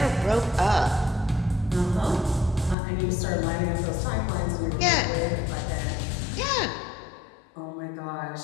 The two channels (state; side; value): drops out; right; at 2.8 s